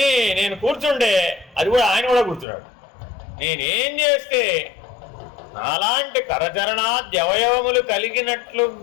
నేను కూర్చుంటే అది కూడా ఆయన కూడా కూర్చున్నాడు. నేనేం చేస్తే నాలాంటి కరచరణాద్యవయవములు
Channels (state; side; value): drops out; right; at 2.5 s